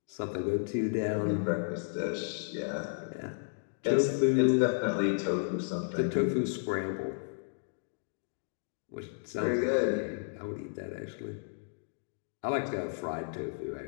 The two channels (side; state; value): right; silent; digital silence